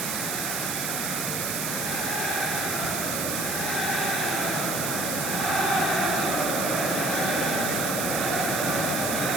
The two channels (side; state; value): right; noise; hiss, 1 dB below the sound